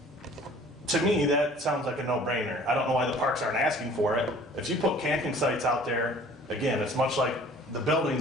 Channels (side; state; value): both; normal; correlation 0.51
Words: To me, that sounds like a no-brainer. I don't know why the parks aren't asking for it. If you put camping sites out there, again, it's much like the